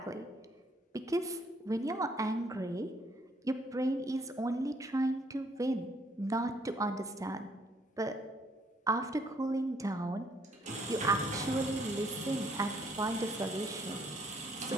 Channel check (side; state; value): both; normal; correlation 0.66